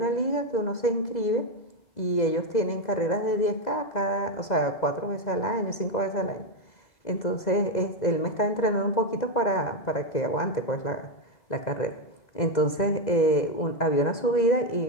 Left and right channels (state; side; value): late; right; 2.0 ms